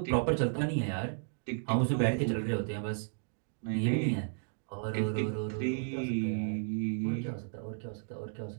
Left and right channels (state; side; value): silent; left; digital silence